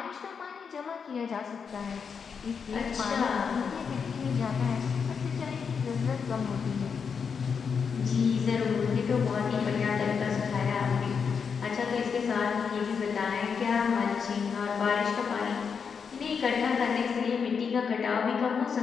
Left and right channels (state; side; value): quieter; right; 6.2 dB